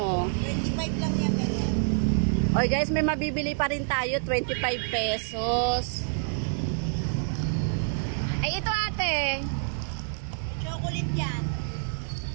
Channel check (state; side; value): silent; left; digital silence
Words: 25 lang yan, ganyan. Oy guys, may mabibili pa rin tayo, 25 pesos. Ay, ito ate. Chocolate yan.